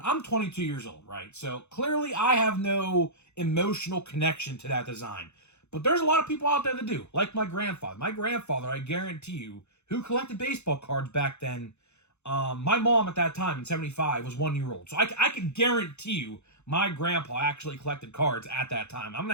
I'm 22 years old, right? So clearly I have no emotional connection to that design. But there's a lot of people out there that do, like my grandfather. My grandfather, I guarantee you, who collected baseball cards back then, my mom at that time in 75 was 1 year old. So I can guarantee you my grandpa actually collected cards at that time. I'm going to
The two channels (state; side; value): late; right; 0.81 ms